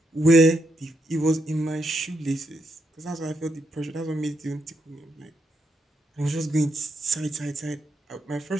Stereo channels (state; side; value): normal; both; correlation 0.80